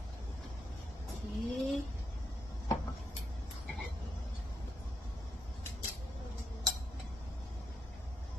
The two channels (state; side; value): normal; both; correlation 0.81